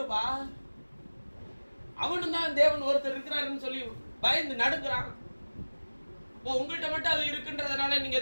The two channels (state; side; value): inverted; both; correlation -1.00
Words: அவனும் தான் தேவன் ஒருத்தர் இருக்கிறாருன்னு சொல்லி பயந்து நடுங்குறான். உங்கள்கிட்ட மட்டும் அது இருக்குன்றதுனால நீங்க